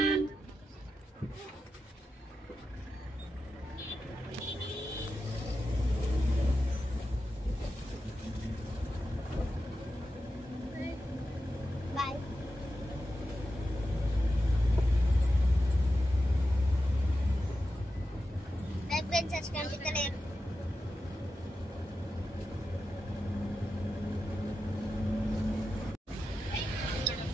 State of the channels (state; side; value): normal; both; correlation 0.90